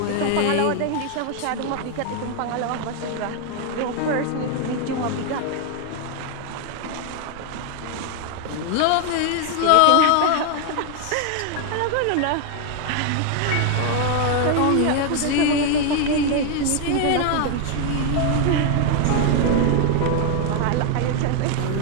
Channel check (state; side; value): different; both; correlation 0.00